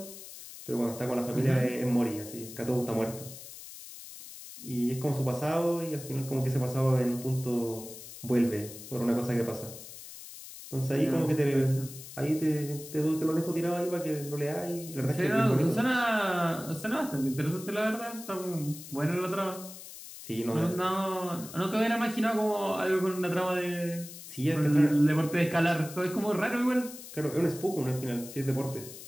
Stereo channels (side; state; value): left; noise; hiss, 14 dB below the sound